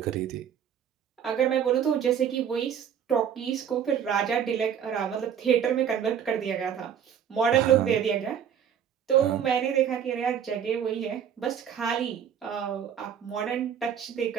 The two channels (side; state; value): left; quieter; 8.5 dB